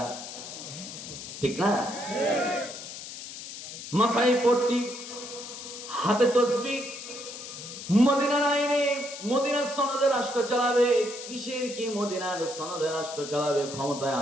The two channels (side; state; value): left; noise; hiss, 11 dB below the sound